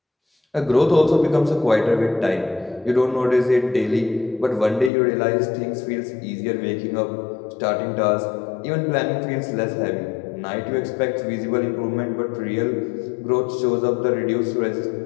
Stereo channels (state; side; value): drops out; right; at 4.9 s